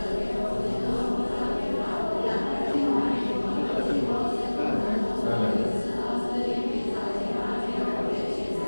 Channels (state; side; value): inverted; both; correlation -1.00